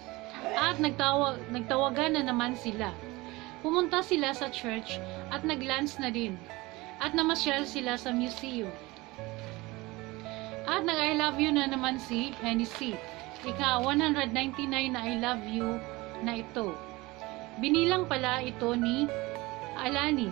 At nagtawagan na naman sila. Pumunta sila sa church at nag-lunch na din. At namasyal sila sa museum. At nag-I love you na naman si Hennessy. Ika 199 na I love you na ito. Binilang pala ito ni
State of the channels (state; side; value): quieter; left; 21.8 dB